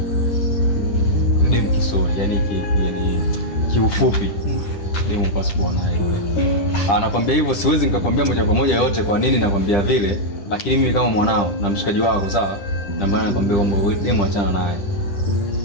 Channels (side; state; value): right; late; 10 ms